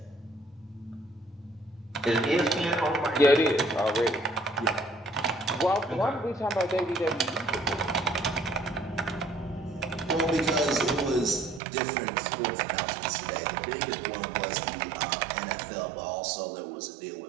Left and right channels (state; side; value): drops out; left; at 11.6 s